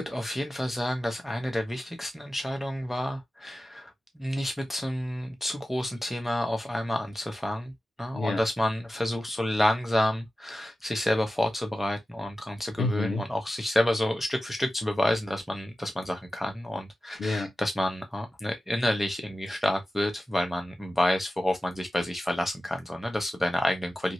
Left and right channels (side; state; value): both; normal; correlation 0.94